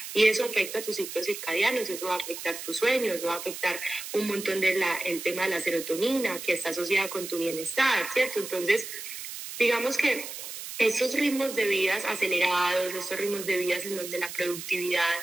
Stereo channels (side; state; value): right; noise; hiss, 9 dB below the sound